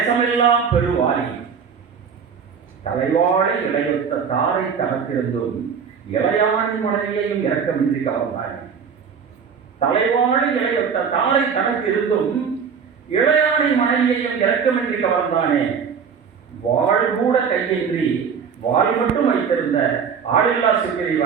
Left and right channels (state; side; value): quieter; left; 6.6 dB